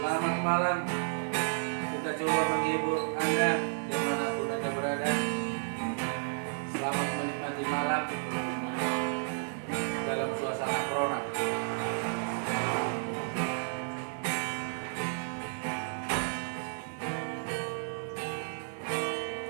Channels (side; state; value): left; silent; digital silence